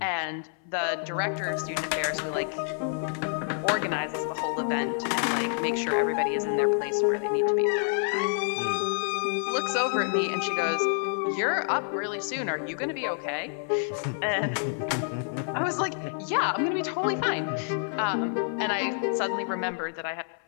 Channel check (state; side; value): silent; right; 58 dB below the other